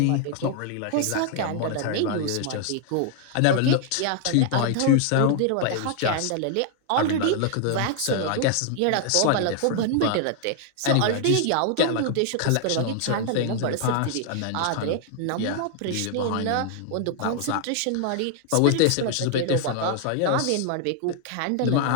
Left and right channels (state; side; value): different; both; correlation 0.00